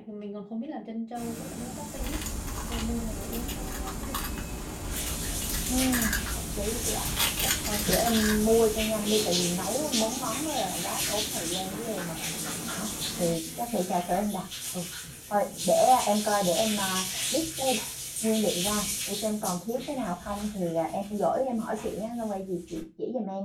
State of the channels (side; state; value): both; identical; correlation 1.00